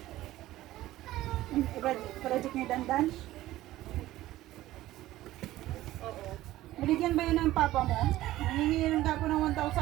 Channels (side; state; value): left; quieter; 15.6 dB